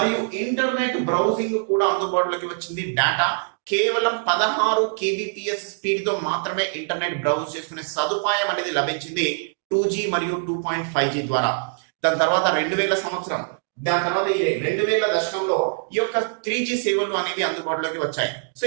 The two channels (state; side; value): silent; left; digital silence